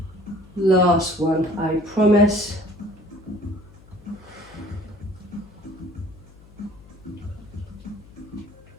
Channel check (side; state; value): left; noise; hum, 23 dB below the sound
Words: Last one, I promise.